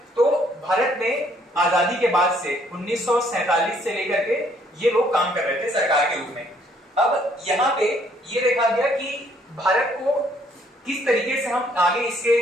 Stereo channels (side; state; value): both; normal; correlation 0.65